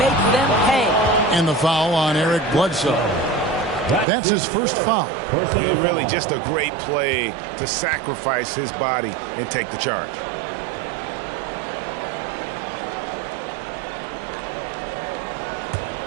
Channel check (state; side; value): drops out; left; at 4.0 s